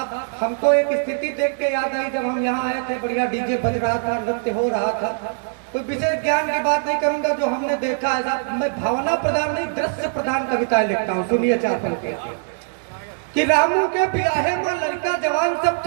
हमको एक स्थिति देख के याद आई, जब हम यहाँ आए थे बढ़िया डीजे बज रहा था, नृत्य हो रहा था। कोई विशेष ज्ञान की बात नहीं करूंगा, जो हमने देखा है साहब, मैं भावना प्रधान नहीं दृश्य प्रधान कविताएं लिखता हूँ। सुनिए चार पंक्ति कि रामू के बियाहे में लड़का जवान सब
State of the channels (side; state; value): left; silent; digital silence